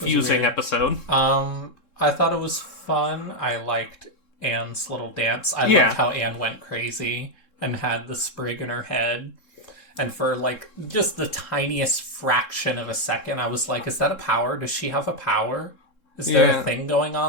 episode. I thought it was fun. I liked Anne's little dance. I liked how Anne went crazy and had the sprig in her head. And for, just the tiniest fraction of a second, I was like, is that a power? Does she have a power? Is there a thing going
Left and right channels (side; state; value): right; late; 3.7 ms